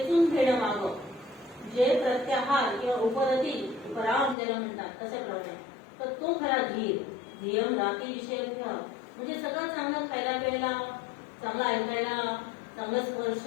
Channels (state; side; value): drops out; right; at 4.4 s